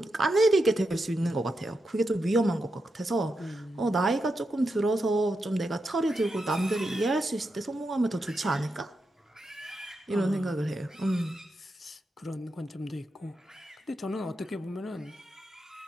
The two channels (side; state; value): both; normal; correlation 0.86